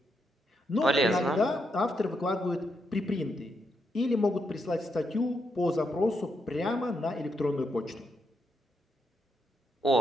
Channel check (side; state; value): both; normal; correlation 0.80